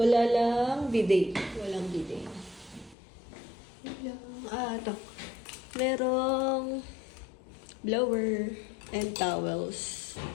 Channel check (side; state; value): right; drops out; at 3.0 s